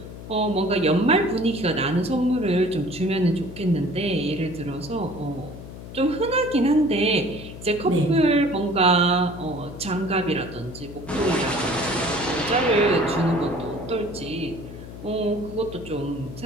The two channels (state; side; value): noise; left; hum, 13 dB below the sound